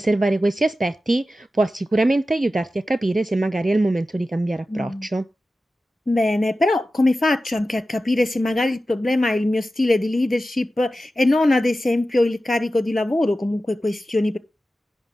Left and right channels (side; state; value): both; normal; correlation 0.93